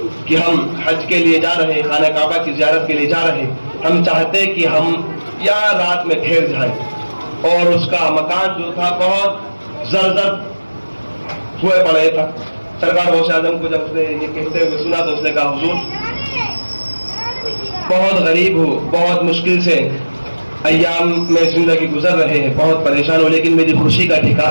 کہ ہم حج کے لیے جا رہے ہیں، خانہ کعبہ کی زیارت کے لیے جا رہے ہیں، ہم چاہتے کہ ہم یہاں رات میں ٹھہر جائیں، اور اس کا مکان جو تھا بہت زرزر ہوئے پڑے تھا۔ سرکار غوث اعظم کو جب اس نے یہ کہتے ہوئے سنا تو اس نے کہا حضور بہت غریب ہو، بہت مشکل سے ایام میں زندگی گزر رہے ہیں، بہت پریشان ہو، لیکن میری خوشی کا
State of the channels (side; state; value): both; inverted; correlation -1.00